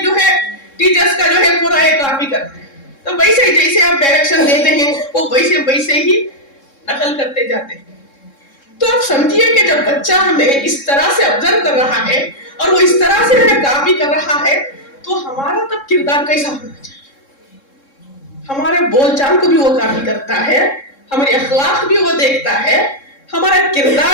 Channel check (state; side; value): late; right; 3.7 ms